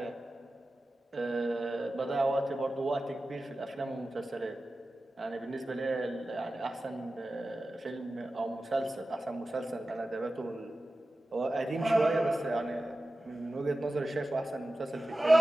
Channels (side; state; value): both; normal; correlation 0.95